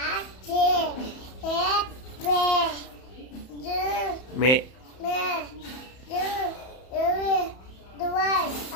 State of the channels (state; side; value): late; right; 31 ms